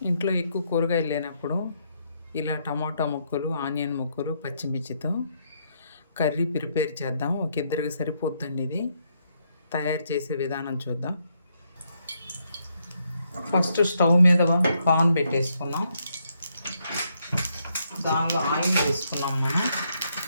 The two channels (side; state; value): both; inverted; correlation -0.76